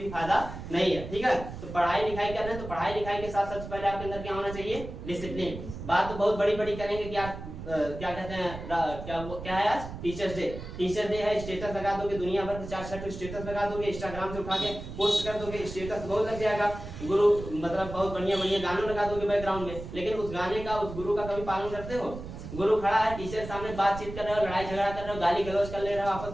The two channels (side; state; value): right; noise; rumble, 10 dB below the sound